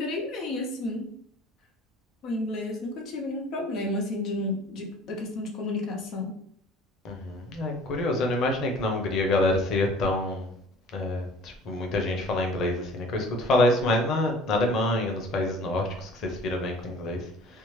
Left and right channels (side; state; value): both; normal; correlation 0.49